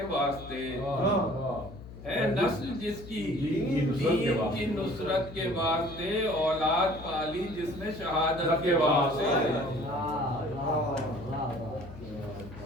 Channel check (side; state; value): left; noise; hum, 15 dB below the sound